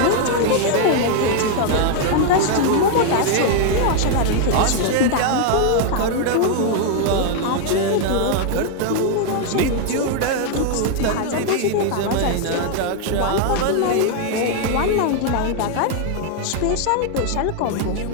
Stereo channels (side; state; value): both; different; correlation 0.00